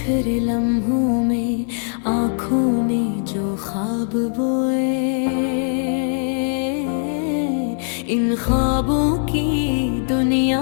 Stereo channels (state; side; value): silent; right; digital silence